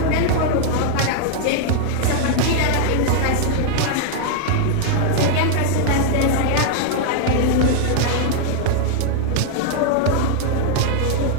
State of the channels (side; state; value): both; different; correlation 0.00